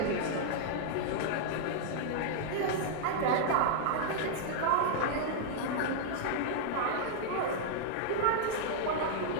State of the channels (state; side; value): different; both; correlation -0.01